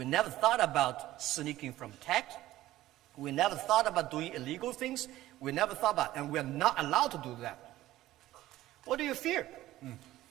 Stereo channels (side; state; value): left; quieter; 15.3 dB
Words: never thought about sneaking from tax. We never thought about doing illegal things. We never thought about, and we're not allowed to do that. What do you fear?